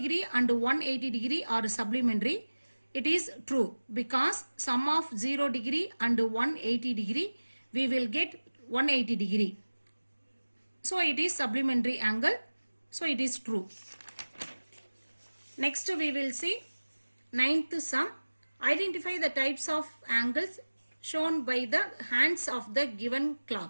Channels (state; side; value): inverted; both; correlation -1.00